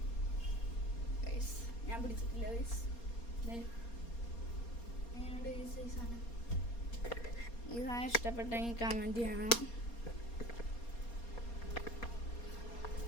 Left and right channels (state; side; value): late; right; 4.3 ms